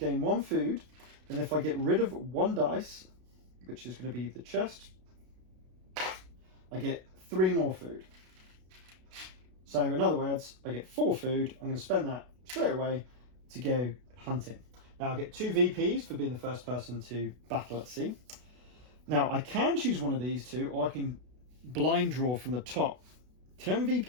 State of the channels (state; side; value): late; left; 32 ms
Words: 1 food, and if I get rid of 1 dice, which is going to be the chest, I get 3 more food. So in other words, I get 4 food. I'm going to spend that straight away to go hunting. Now I get 2 VPs for being the first person to battle at sea. Now I can choose one of these 2, or I can blind draw from the top. 10